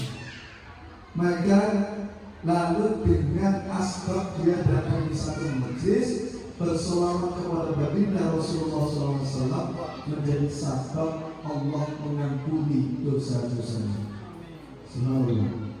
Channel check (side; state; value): both; identical; correlation 1.00